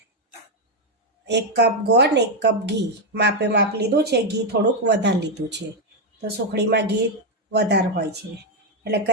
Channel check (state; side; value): normal; both; correlation 0.04